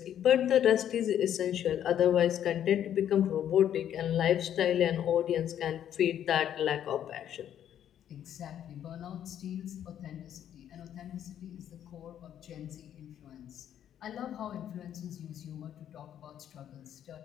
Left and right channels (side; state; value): right; quieter; 10.2 dB